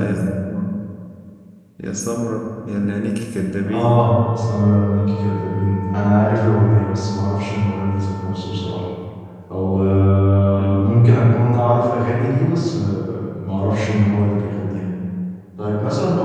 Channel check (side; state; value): both; identical; correlation 1.00